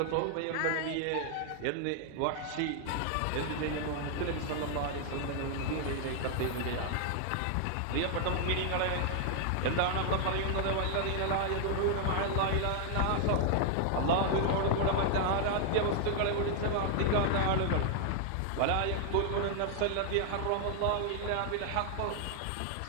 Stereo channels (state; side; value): different; both; correlation 0.00